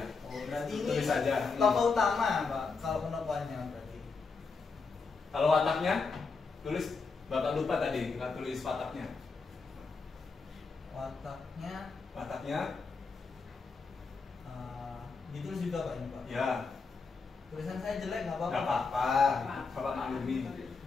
Oh, berarti ini Tulis saja. tokoh utama, Pak. Kalau penokohannya berarti. Kalau wataknya, tulis. Bapak lupa tadi, nggak tulis wataknya. Wataknya Wataknya, ditulis juga, Pak, ini, Pak. ya Tulisan saya jelek nggak apa-apa. nggak apa-apa. Bapak maklumi.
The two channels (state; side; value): quieter; right; 4.6 dB